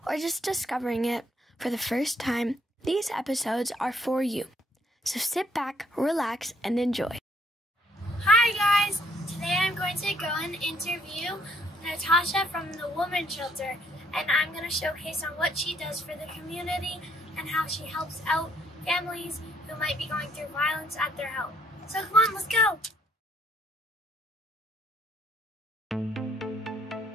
or just discovering it for the first time, these episodes are for you. So sit back, relax, and enjoy. Hi guys! Today I'm going to go and interview Natasha from the Women's Shelter, and I'm going to showcase on what she does for the community and how she helps out families who might be going through violence at their home. So come on, let's go!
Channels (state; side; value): normal; both; correlation 0.67